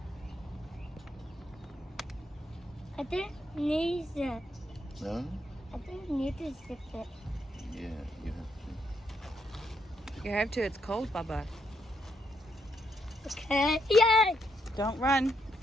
I didn't need it. No? I didn't need to zip it. Yeah, you have to. You have to, it's cold, Baba. Okay. Yay! Don't run,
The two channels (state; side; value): normal; both; correlation 0.77